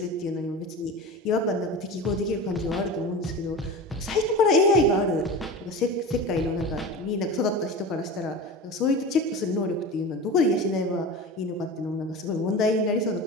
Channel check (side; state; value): both; normal; correlation 0.30